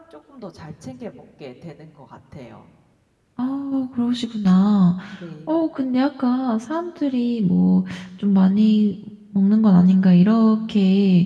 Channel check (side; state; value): both; identical; correlation 1.00